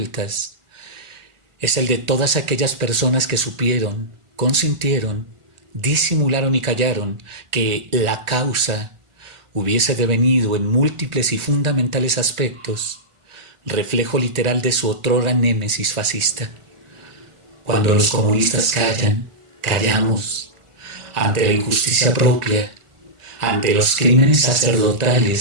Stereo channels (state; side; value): late; left; 1.4 ms